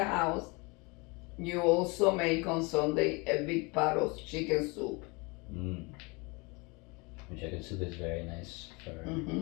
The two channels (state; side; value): quieter; right; 28.0 dB